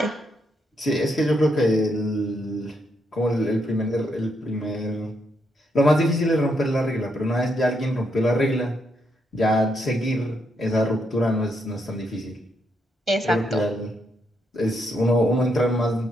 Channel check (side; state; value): both; normal; correlation 0.78